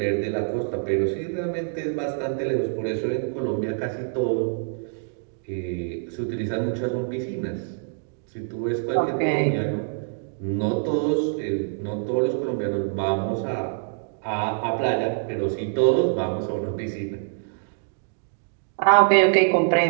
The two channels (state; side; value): silent; left; digital silence